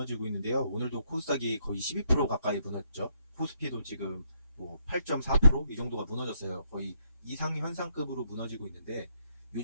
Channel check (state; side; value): inverted; both; correlation -0.75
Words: 있는데요. 오늘도 코스닥이 거의 12% 가까이 무너졌죠. 코스피도 지금 뭐 8.4%? 이 정도가 무너졌어요. 거의 이상현상급으로 무너지고 있는데